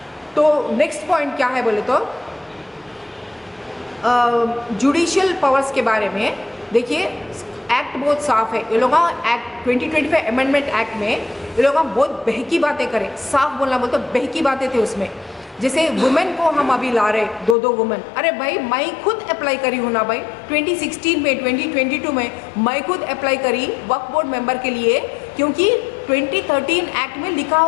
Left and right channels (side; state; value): right; drops out; at 17.6 s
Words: तो नेक्स्ट पॉइंट क्या है बोले तो जुडिशियल पावर्स के बारे में देखिए, एक्ट बहुत साफ है। ये लोग एक्ट 2025 अमेंडमेंट एक्ट में ये लोग बहुत बहकी बातें करें, साफ बोलना बोलते बहकी बातें थे उसमें। जैसे वुमेन को हम अभी ला रहे 2 वुमेन, अरे भाई मैं खुद अप्लाई करी हूँ ना भाई, 2016 में 2022 में मैं खुद अप्लाई करी वक्फ बोर्ड मेंबर के लिए, क्योंकि 2013 एक्ट में लिखा